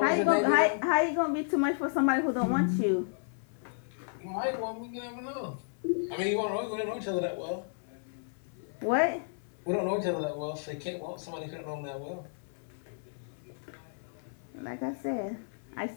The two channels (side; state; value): right; silent; 56 dB below the other